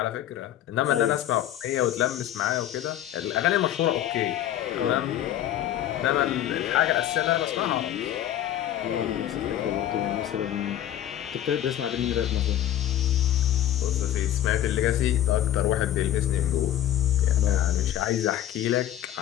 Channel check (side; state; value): right; quieter; 12.0 dB